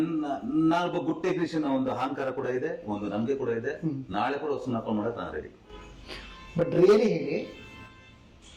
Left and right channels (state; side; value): identical; both; correlation 1.00